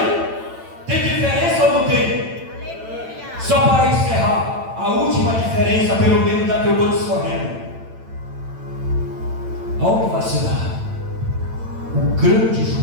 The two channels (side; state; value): left; late; 8.9 ms